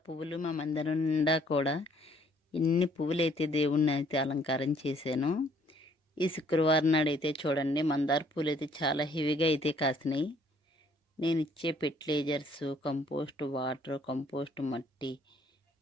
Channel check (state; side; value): normal; both; correlation 0.62